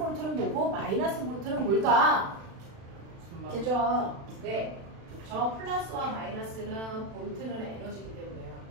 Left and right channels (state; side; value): late; left; 36 ms